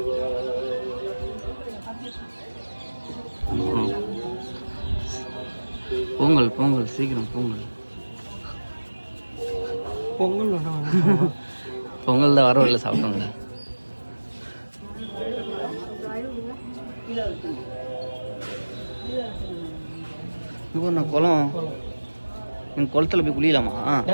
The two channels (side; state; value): both; inverted; correlation -1.00